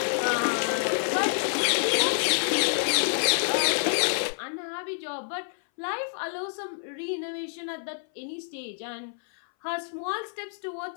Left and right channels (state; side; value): silent; right; 59 dB below the other